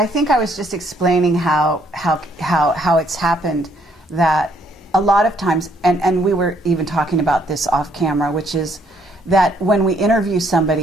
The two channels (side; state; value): both; normal; correlation 0.67